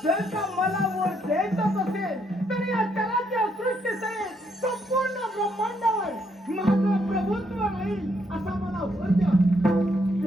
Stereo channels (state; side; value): normal; both; correlation 0.73